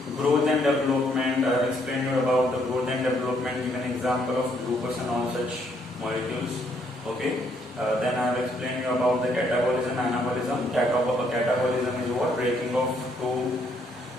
growth and development. I have explained you about the growth and development, give an example of glucose and all such molecules. Okay. Then I have explained you about the catabolism, anabolism. Catabolism is what? Breaking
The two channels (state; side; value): normal; both; correlation 0.70